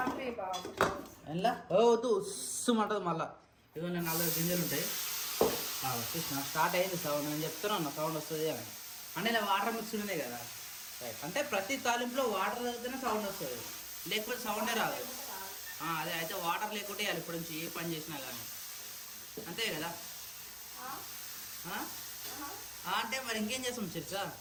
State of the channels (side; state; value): both; identical; correlation 1.00